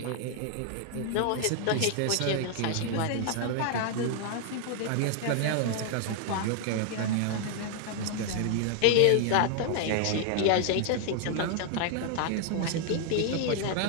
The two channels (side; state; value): both; different; correlation 0.00